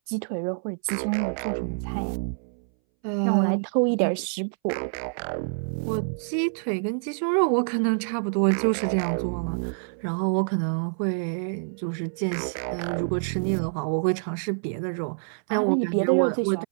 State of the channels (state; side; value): silent; left; 61 dB below the other